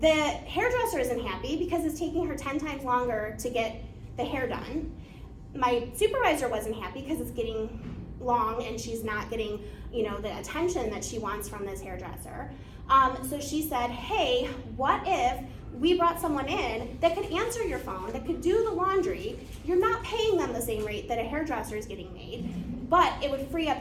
hairdresser isn't happy because it's taking her 10 times longer to get the hair done. My supervisor wasn't happy because it's getting long and she's not getting, the attention that she wants from this hairdresser. So she said, hey, what if we brought someone in that could answer your phone, that could do the laundry? You're not paying them the same rate that a hairdresser is getting made, but it would free up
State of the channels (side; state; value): both; identical; correlation 1.00